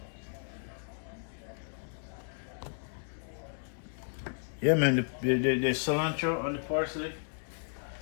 Yeah, man, the cilantro and the parsley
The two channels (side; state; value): right; silent; digital silence